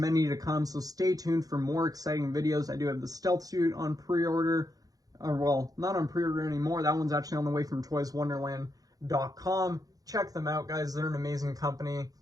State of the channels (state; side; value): late; left; 0.18 ms